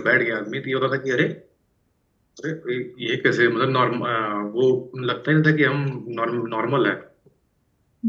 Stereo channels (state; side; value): identical; both; correlation 1.00